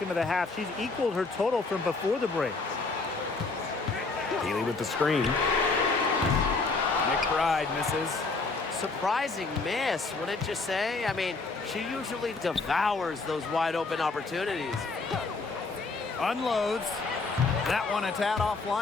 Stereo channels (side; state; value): right; quieter; 3.9 dB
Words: of the half, she's equaled her total from before the break. Peely with the screen. McBride misses. Surprising miss, wouldn't you say? I mean, she usually devours those wide open opportunities. Unloads. That one a tad